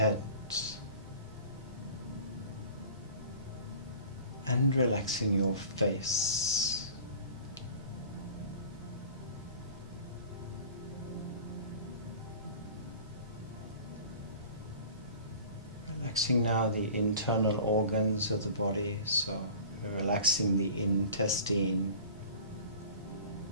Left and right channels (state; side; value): inverted; both; correlation -0.42